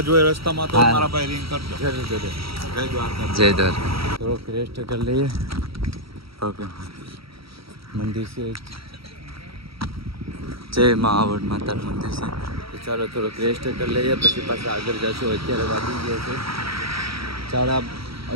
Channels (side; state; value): left; late; 0.75 ms